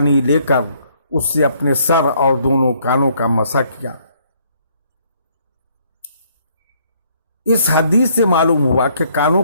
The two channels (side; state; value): both; inverted; correlation -0.66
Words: لے کر اس سے اپنے سر اور دونوں کانوں کا مسح کیا۔ اس حدیث سے معلوم ہوا کہ کانوں